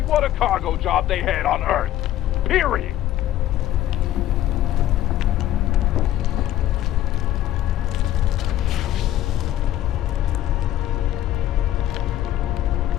cargo job they had on Earth. Period.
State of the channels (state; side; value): quieter; right; 13.1 dB